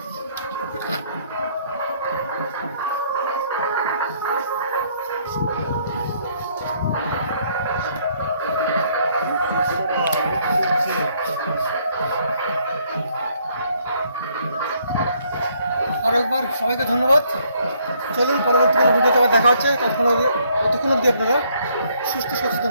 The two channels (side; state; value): both; inverted; correlation -0.67